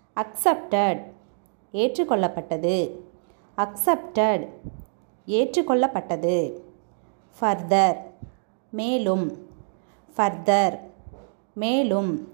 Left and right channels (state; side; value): silent; left; digital silence